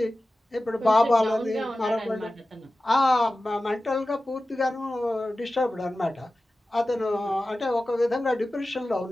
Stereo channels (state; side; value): normal; both; correlation 0.95